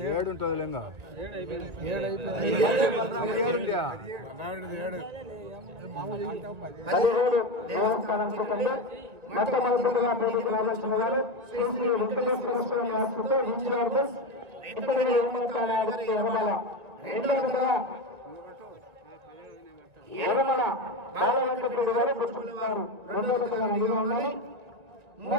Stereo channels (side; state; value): left; late; 1.8 ms